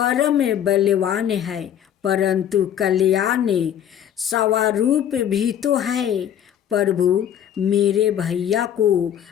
बलवान है, परंतु कल्याण स्वरूप भी तो है। प्रभु, मेरे भैया को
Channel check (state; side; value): quieter; right; 10.0 dB